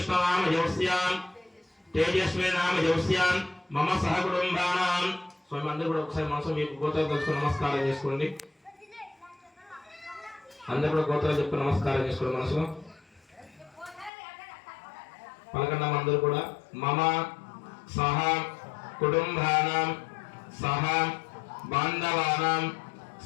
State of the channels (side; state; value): right; drops out; at 14.1 s